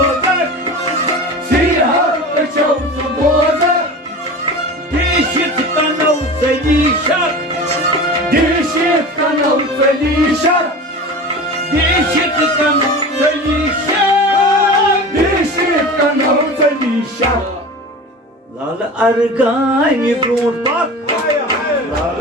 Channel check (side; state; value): both; normal; correlation 0.33